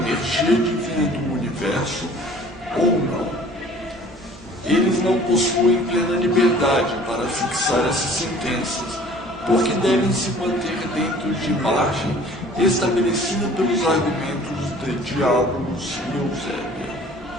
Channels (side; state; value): both; normal; correlation 0.50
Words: divina do universo ou não. Eles não possuem plena liberdade para fixar essas sentenças, porque devem se manter dentro de margem estabelecida pelos argumentos de Diabolos e Eusébia.